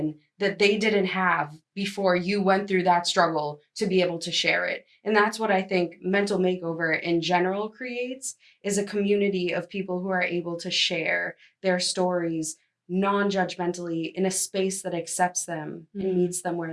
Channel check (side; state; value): both; identical; correlation 1.00